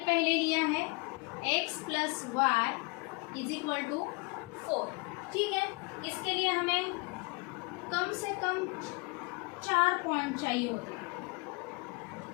लिया है x plus y is equal to 4, ठीक है। इसके लिए हमें कम से कम 4 पॉइंट चाहिए होते हैं।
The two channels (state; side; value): quieter; right; 28.3 dB